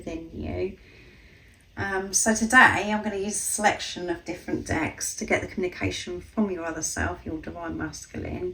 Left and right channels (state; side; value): identical; both; correlation 1.00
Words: you. So today I'm going to use a selection of different decks to get the communication from your other self, your divine